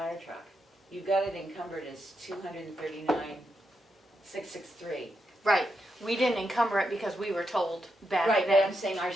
truck. You got it encumbered as $239,663. Right, we didn't encumber it because we were told back Right, but I'm then. saying our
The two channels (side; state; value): both; normal; correlation 0.84